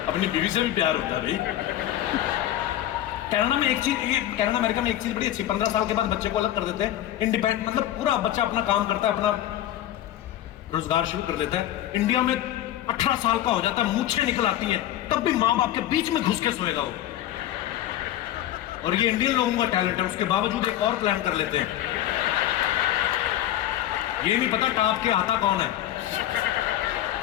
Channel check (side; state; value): right; quieter; 12.8 dB